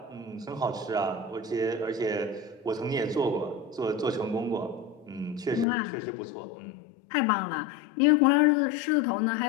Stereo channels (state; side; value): drops out; right; at 5.7 s